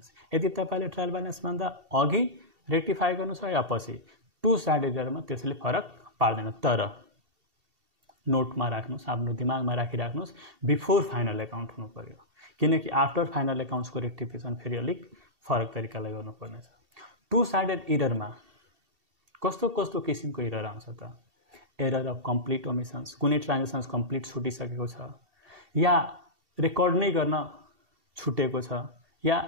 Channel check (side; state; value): left; late; 2.7 ms